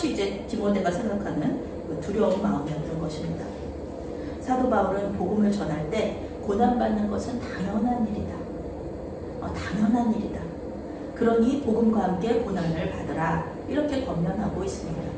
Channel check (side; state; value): both; identical; correlation 1.00